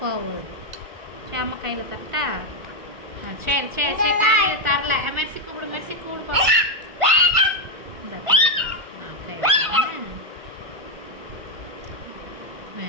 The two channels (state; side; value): late; left; 1.5 ms